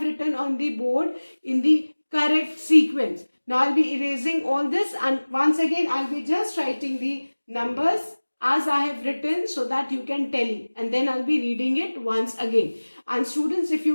written on the board in the correct sequence. Now I'll be erasing all this, and once again I'll be just writing the numbers as I have written so that you can tally, and then I'll be reading it once again. And students, if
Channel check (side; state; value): both; inverted; correlation -1.00